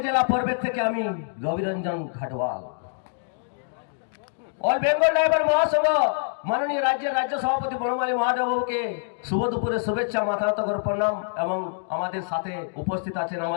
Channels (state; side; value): silent; right; digital silence